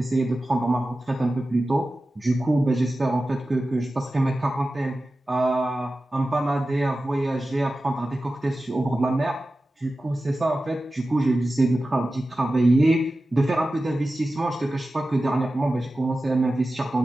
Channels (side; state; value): both; normal; correlation 0.94